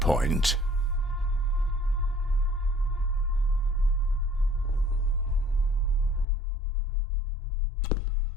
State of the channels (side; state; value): right; drops out; at 6.2 s